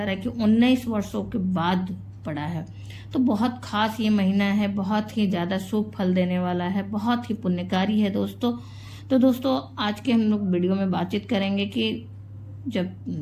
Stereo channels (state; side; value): identical; both; correlation 1.00